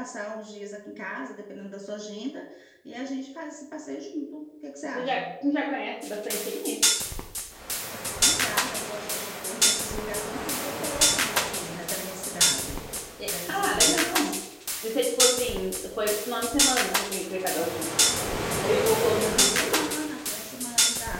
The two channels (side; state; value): both; identical; correlation 1.00